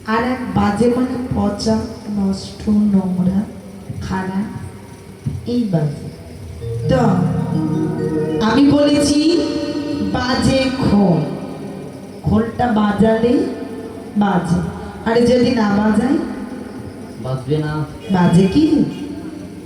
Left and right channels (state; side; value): identical; both; correlation 1.00